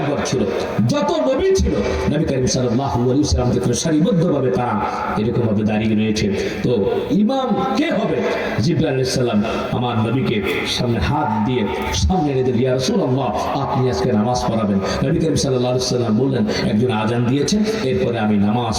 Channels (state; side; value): identical; both; correlation 1.00